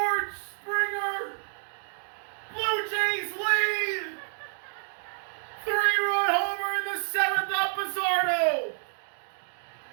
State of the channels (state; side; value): silent; left; 58 dB below the other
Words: Springer! Blue Jays lead! 3-run homer in the 7th up Bizzardo!